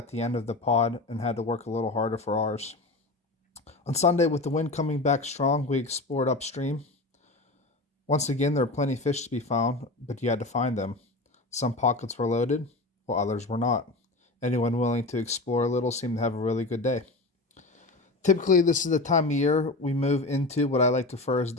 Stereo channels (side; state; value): right; quieter; 3.0 dB